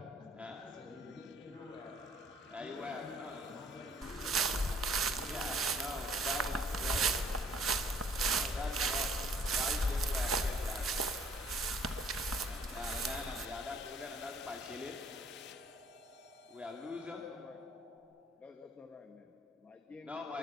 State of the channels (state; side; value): normal; both; correlation 0.59